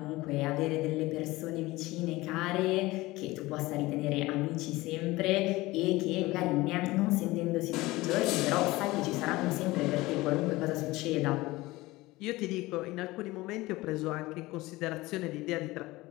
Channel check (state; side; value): quieter; right; 19.8 dB